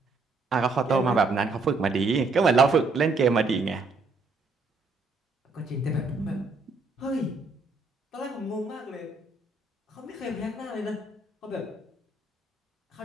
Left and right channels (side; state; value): left; quieter; 3.7 dB